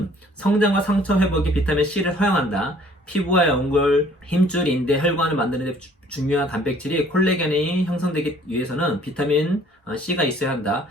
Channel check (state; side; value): normal; both; correlation 0.57